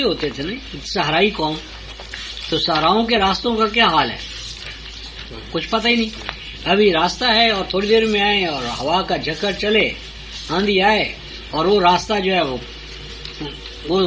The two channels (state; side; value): identical; both; correlation 1.00